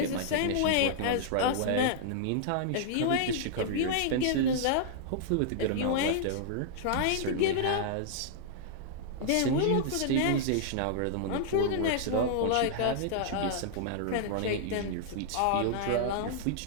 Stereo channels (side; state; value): both; different; correlation -0.01